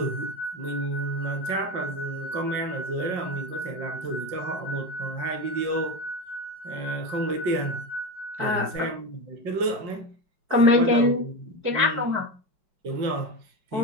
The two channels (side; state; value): left; late; 5.5 ms